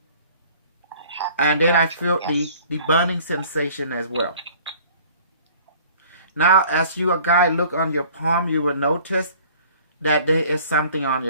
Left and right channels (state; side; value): inverted; both; correlation -0.51